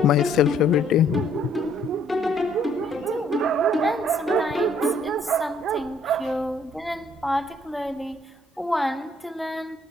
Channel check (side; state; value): both; normal; correlation 0.64